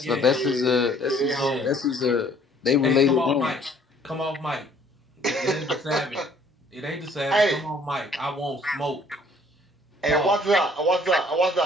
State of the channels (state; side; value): normal; both; correlation 0.59